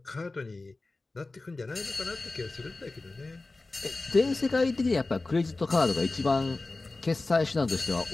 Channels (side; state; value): right; quieter; 3.3 dB